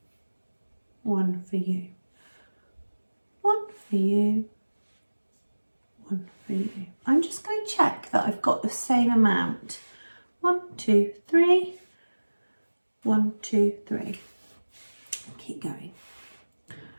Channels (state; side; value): inverted; both; correlation -1.00